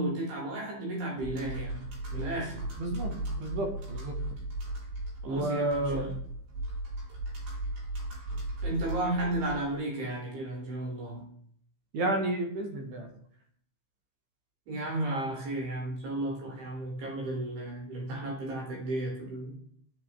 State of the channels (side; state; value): left; late; 15 ms